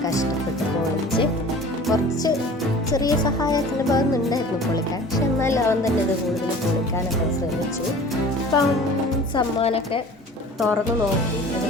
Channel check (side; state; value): both; normal; correlation 0.43